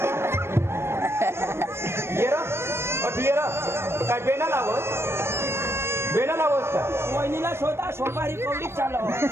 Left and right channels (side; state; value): left; late; 0.12 ms